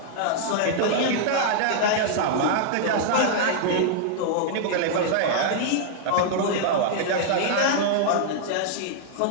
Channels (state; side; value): different; both; correlation -0.01